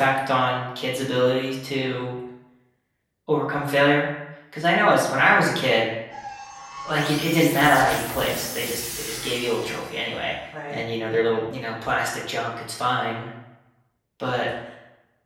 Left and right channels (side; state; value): both; identical; correlation 1.00